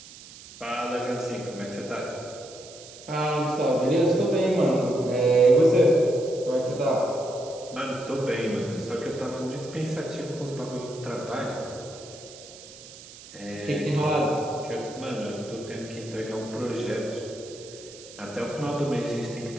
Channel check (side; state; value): right; noise; hiss, 17 dB below the sound